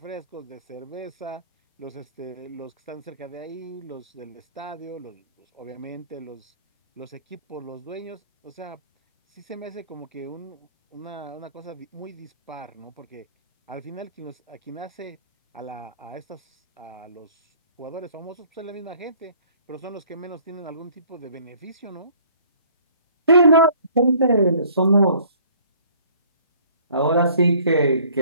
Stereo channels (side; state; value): both; inverted; correlation -0.56